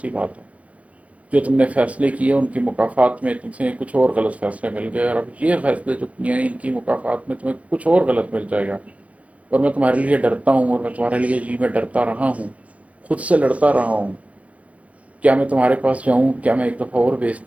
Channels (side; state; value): left; late; 0.066 ms